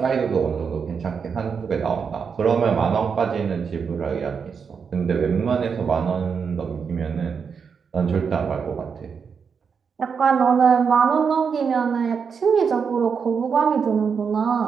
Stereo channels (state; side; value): quieter; left; 6.2 dB